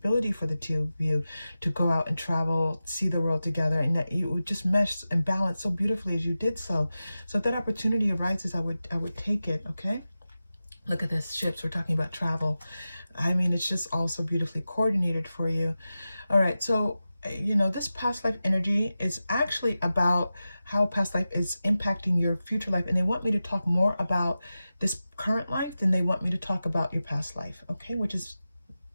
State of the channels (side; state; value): both; inverted; correlation -0.94